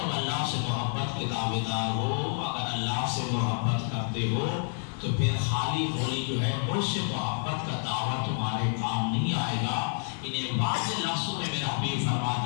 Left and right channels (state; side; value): silent; right; 59 dB below the other